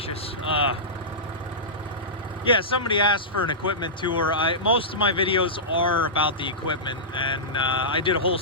Yeah, somebody asked for an equipment tour. Most of my videos are about the equipment, and I did a whole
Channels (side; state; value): both; normal; correlation -0.16